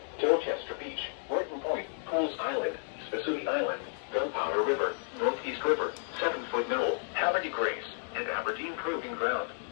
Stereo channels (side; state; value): right; silent; 56 dB below the other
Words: Dorchester Beach, Horton Point, Pools Island, Spassuti Island, Gunpowder River, Northeast River, 7-Foot Knoll, Haverty Grace, and Aberdeen Proving Ground.